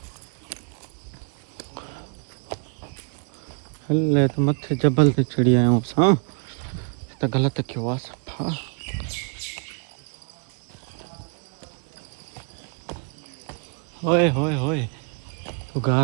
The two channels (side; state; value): left; quieter; 39.4 dB